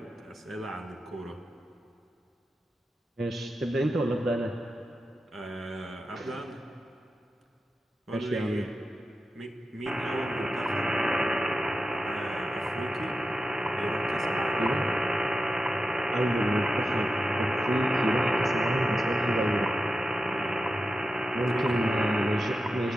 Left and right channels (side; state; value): both; normal; correlation 0.91